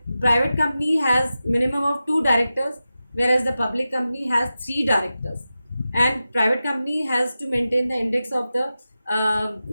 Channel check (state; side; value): inverted; both; correlation -0.93